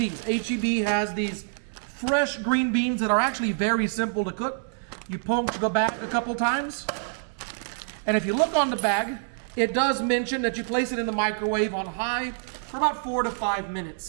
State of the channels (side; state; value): left; silent; digital silence